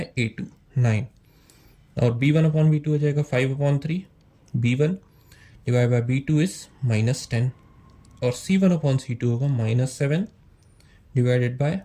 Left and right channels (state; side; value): identical; both; correlation 1.00